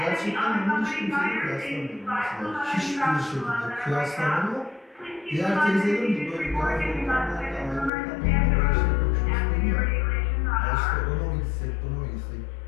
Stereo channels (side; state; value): right; drops out; at 7.9 s